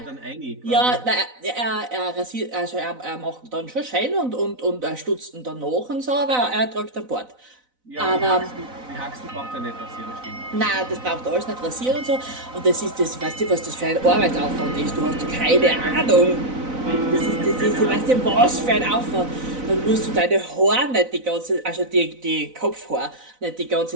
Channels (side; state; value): left; late; 4.0 ms